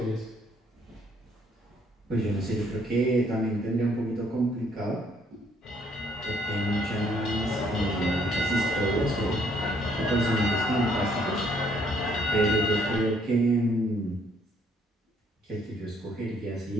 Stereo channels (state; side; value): normal; both; correlation 0.66